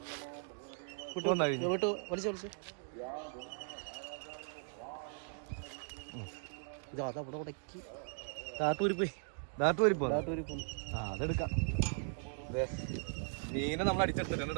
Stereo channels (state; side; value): silent; left; 52 dB below the other